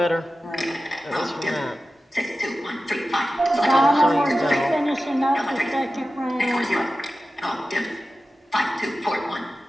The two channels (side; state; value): both; normal; correlation 0.94